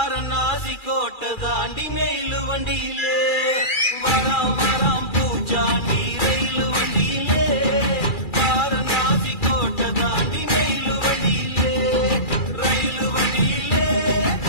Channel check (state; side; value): late; right; 2.4 ms